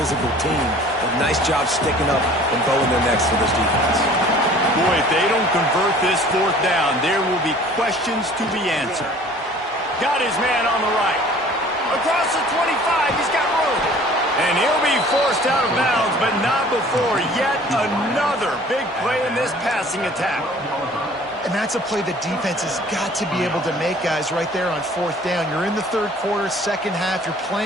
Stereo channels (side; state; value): both; normal; correlation 0.50